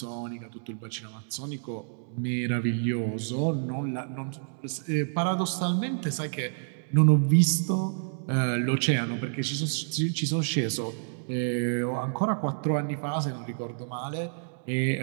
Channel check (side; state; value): left; silent; digital silence